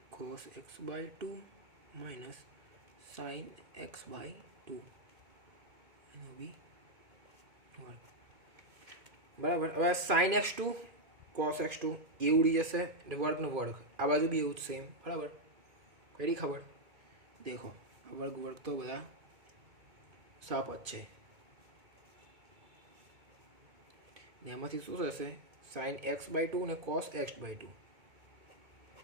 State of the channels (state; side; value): late; left; 2.2 ms